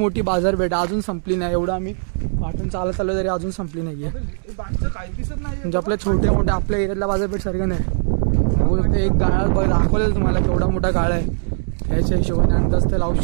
बाजारपेठ अजून संपली नाही. एवढं आम्ही वाटून चालत आलो तरी अजून संपली नाहीये. म्हणजे आपल्या छोट्या मोठ्या आपल्या एरियातल्या बाजारपेठ सारखं नाही. बघू शकतो एक गाळा दाखवलेलं तुम्हाला केवढा मोठा गाळा आहे. ह्याच्या हिशोबाने अंदाज ते लावू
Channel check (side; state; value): left; silent; digital silence